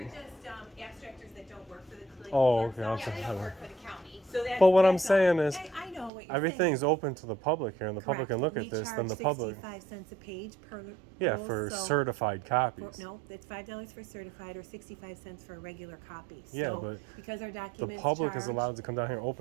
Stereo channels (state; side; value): drops out; left; at 6.1 s